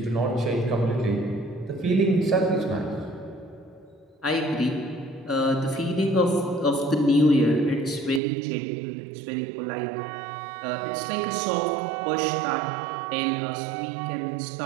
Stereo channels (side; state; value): left; drops out; at 8.2 s